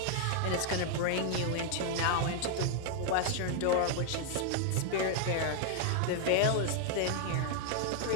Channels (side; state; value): both; different; correlation 0.00